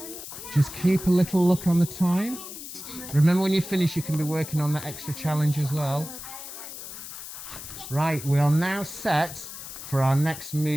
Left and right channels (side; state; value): left; noise; hiss, 11 dB below the sound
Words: Just keep a little look on the time. Remember, when you finish you can be working on that extra challenge as well. Right, we are now set for our next